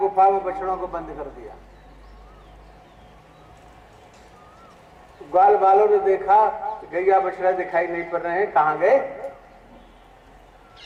में बछड़ों को बंद कर दिया। ग्वाल बालों ने देखा गैया बछड़ा दिखाई नहीं पड़ रहे हैं, कहां गए?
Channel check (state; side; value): identical; both; correlation 1.00